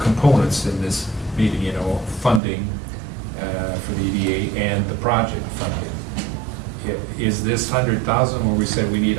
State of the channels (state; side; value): drops out; left; at 2.4 s